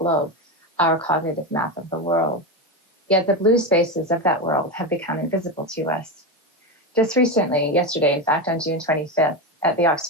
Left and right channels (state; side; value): normal; both; correlation 0.15